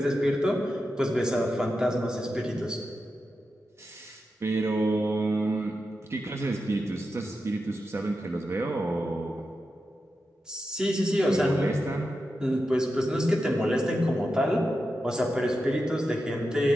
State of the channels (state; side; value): normal; both; correlation 0.89